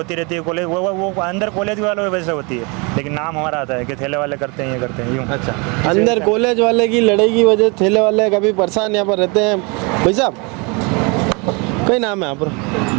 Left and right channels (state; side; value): quieter; left; 30.4 dB